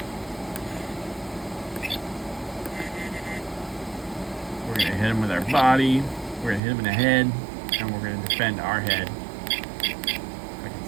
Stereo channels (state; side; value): drops out; left; at 6.6 s